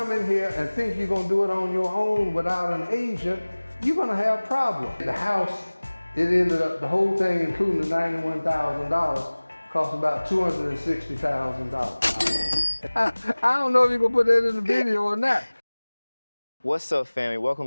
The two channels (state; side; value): inverted; both; correlation -1.00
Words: in here and think you're gonna do it on your own without an agent, you're gonna have problems. The house, it ended up, the whole thing, including the $91,000, cost about $260,000. I don't know if you're gonna put that in the video or not. What's up, family?